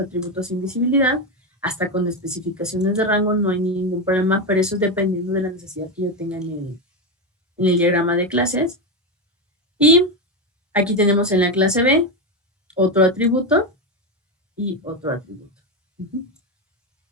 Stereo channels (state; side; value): normal; both; correlation 0.11